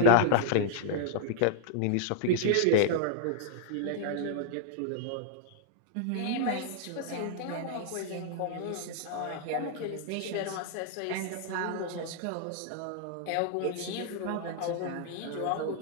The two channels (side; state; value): both; different; correlation 0.00